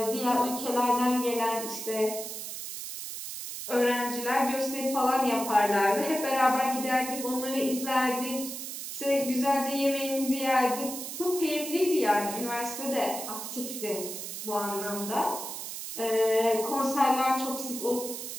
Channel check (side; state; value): right; noise; hiss, 7 dB below the sound